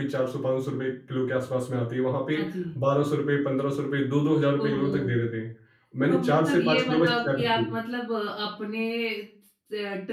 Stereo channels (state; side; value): identical; both; correlation 1.00